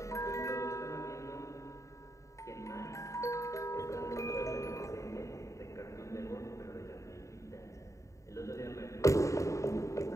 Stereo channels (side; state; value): right; late; 0.15 ms